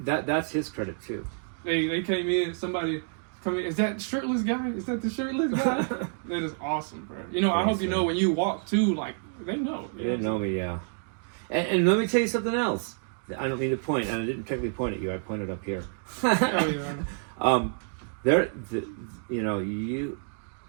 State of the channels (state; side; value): silent; left; 59 dB below the other